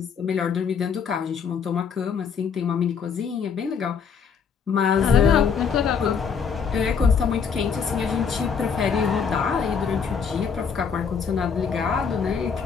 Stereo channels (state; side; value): quieter; right; 6.4 dB